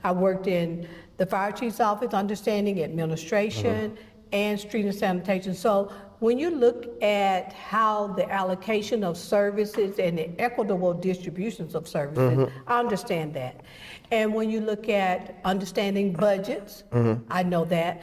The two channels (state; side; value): identical; both; correlation 1.00